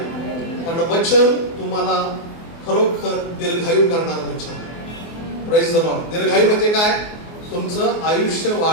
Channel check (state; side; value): late; right; 24 ms